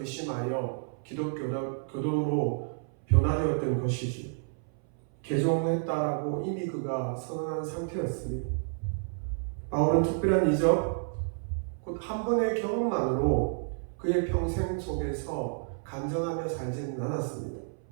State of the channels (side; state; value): left; silent; 58 dB below the other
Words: 기독교도로 변화되었던 것이죠. 개종했다라고 이미 그가 선언한 상태였습니다. 바울은 특별한 이적, 곧 한 번의 경험만으로 그의 평생 속에서 간증하며 살지는 않았습니다.